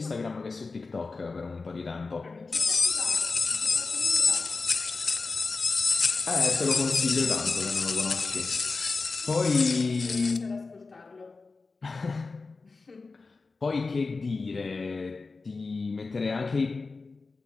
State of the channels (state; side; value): quieter; right; 4.0 dB